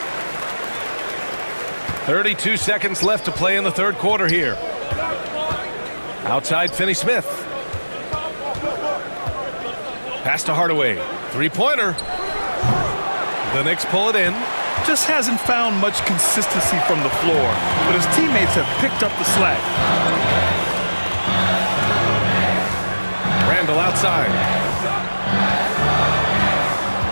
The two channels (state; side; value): inverted; both; correlation -1.00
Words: 32 seconds left to play in the third quarter here. Outside Finney-Smith. Pass to Hardaway. Three-pointer. The Knicks pull it in. Just hasn't found much consistency from the floor, but his teammates have picked up the slack. Randall outside.